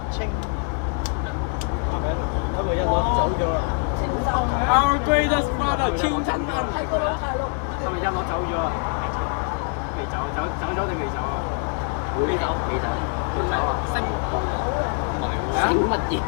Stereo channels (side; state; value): right; quieter; 39.4 dB